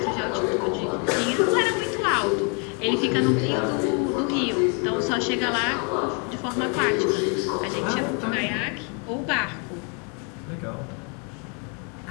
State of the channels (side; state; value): right; quieter; 36.3 dB